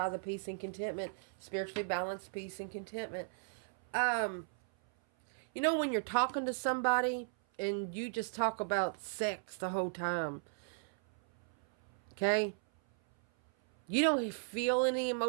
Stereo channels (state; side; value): silent; left; 53 dB below the other